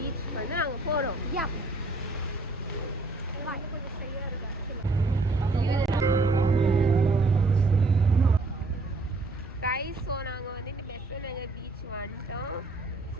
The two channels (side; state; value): left; quieter; 3.2 dB